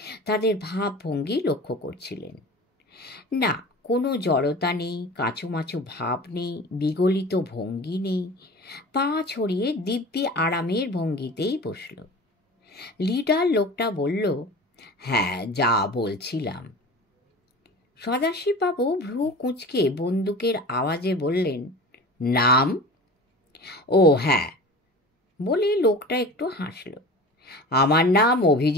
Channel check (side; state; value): both; normal; correlation 0.37